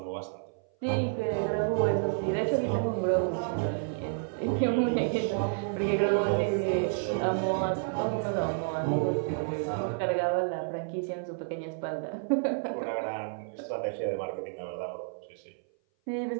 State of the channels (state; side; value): silent; left; 56 dB below the other